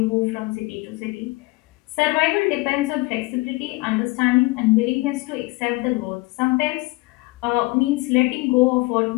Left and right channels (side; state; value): right; quieter; 23.0 dB